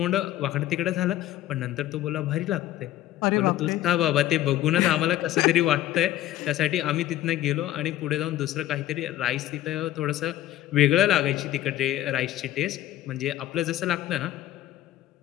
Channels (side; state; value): right; quieter; 13.8 dB